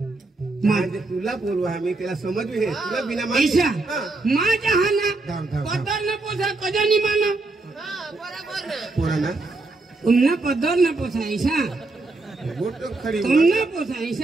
म्हणजे तुला बोलू आम्ही त्याला समजू हे तुला बिना ऐसा माहिती माझ्या हा ना धाव, धाव. पदर न पोसा कधी नाही मानो पोरांना तुमना पदर न पोसा ऐसा गोट खरी तुमना पोसा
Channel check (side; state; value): left; quieter; 3.3 dB